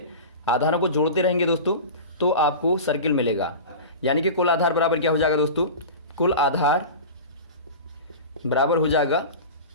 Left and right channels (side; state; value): both; inverted; correlation -0.31